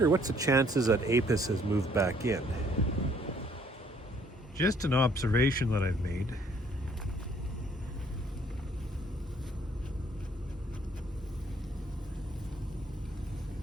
what's the chances that apis has moved back in. Just an observation that I've made.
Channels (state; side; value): normal; both; correlation 0.63